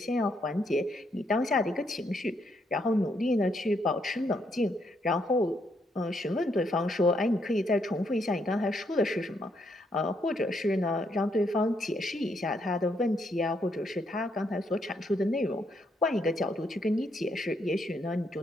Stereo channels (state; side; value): normal; both; correlation 0.75